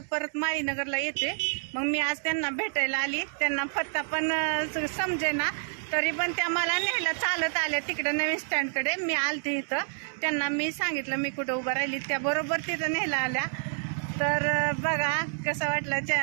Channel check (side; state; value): left; silent; 59 dB below the other